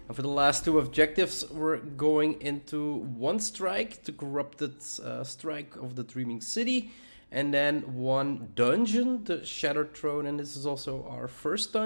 And for the last two objectives we're going into one strike, the corrupted strike of the Dreaming City, and then one dungeon, the Shattered Throne, and this is also our first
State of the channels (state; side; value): inverted; both; correlation -1.00